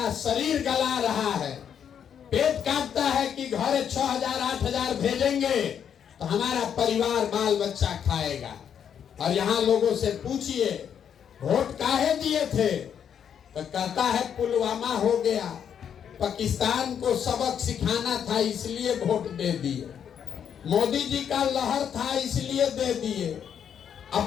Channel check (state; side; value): quieter; right; 8.3 dB